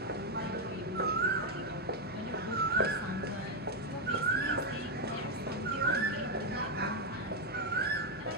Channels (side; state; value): both; normal; correlation 0.03